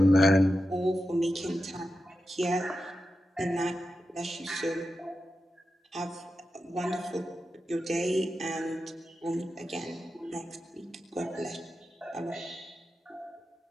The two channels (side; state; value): both; normal; correlation 0.90